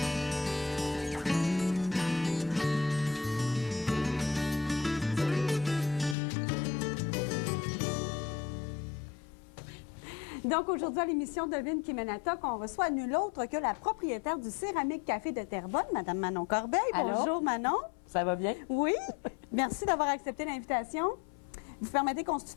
Donc, aujourd'hui, à l'émission Devine qui mène à toc, on reçoit nul autre que la propriétaire du Céramique Café de Terrebonne, Mme Manon Corbeil. Allô? Bonjour, Manon. Ça va bien? Oui. Merci d'avoir accepté l'invitation. Vous permettez qu'on se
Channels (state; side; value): drops out; right; at 6.2 s